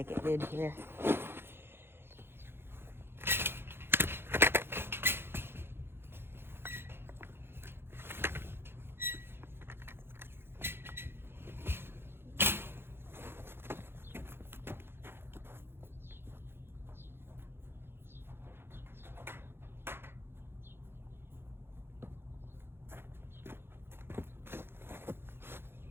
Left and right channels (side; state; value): left; late; 0.11 ms